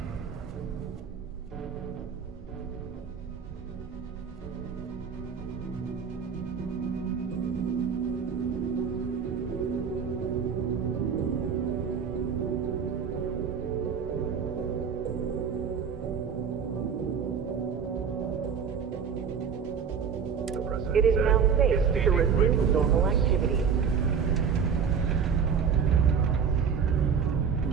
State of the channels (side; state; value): left; quieter; 6.8 dB